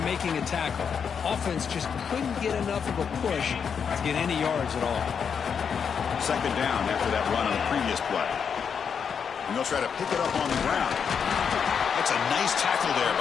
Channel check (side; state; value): right; quieter; 6.8 dB